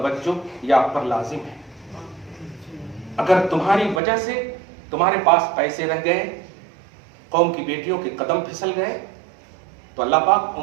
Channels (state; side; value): drops out; left; at 4.0 s